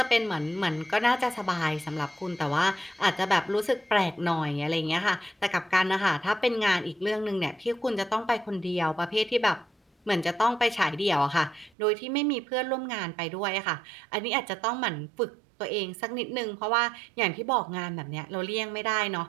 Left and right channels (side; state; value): left; drops out; at 11.7 s